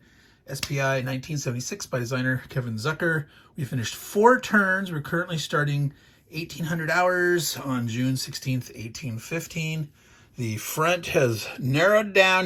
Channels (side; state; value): both; identical; correlation 1.00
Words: SPI 1976 by designer Kevin Zucker. We finished 4 turns. We're currently starting 1800 hours on June 16th, 1815. The front has narrowed down